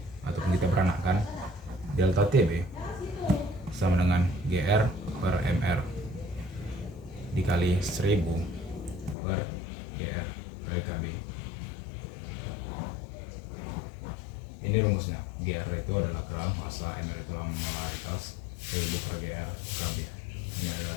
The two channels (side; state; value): right; drops out; at 9.2 s